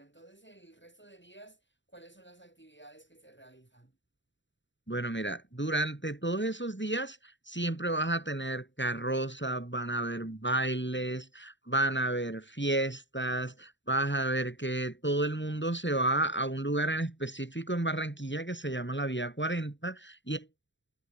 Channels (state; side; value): late; right; 0.54 ms